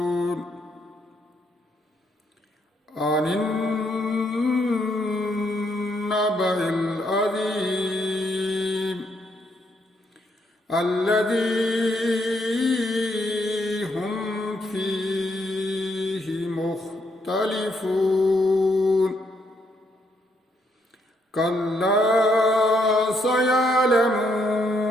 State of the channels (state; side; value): normal; both; correlation 0.74